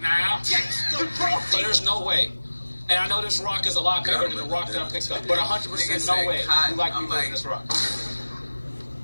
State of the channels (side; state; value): both; inverted; correlation -1.00